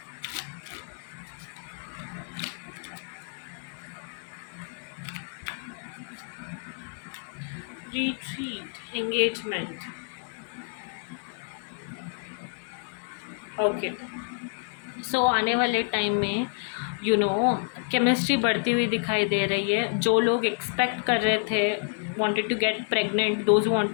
Retreat. Engagement. Okay. सो आने वाले टाइम में केमिस्ट्री बढ़ती हुई दिखाई दे रही है, जो लोग एक्सपेक्ट कर रहे थे wanted to get pregnant, those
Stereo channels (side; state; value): right; silent; digital silence